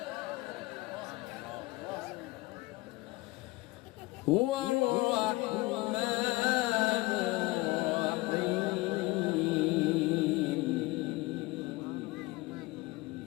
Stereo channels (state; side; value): quieter; right; 21.3 dB